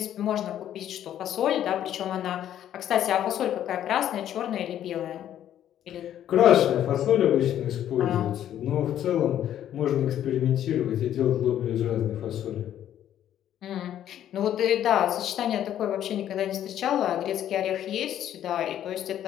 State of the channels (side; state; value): right; quieter; 11.0 dB